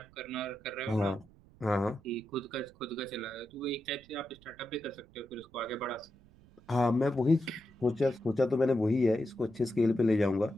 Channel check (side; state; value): right; noise; rumble, 26 dB below the sound